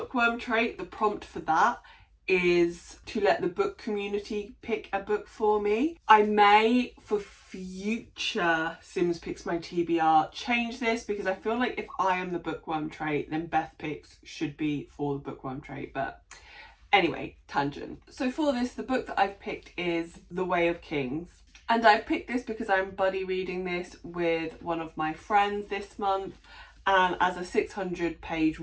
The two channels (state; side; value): identical; both; correlation 1.00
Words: trait, the prompt for that is to let the book community pick a book for me. I may, for future Sims Picks My TBR, change this, because I feel like if I am the bookworm trait, then Beth Picks should be for the bookworm trait. But anyway, tangent. So for this, the book that I've picked is The Way of Kings. And I've picked this because I'm buddy reading this with one of my friends this month. And as a 600-page